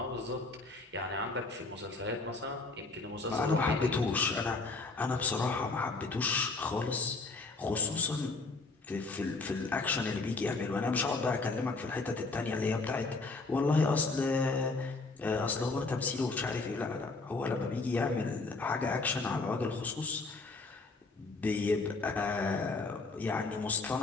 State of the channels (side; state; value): right; quieter; 3.6 dB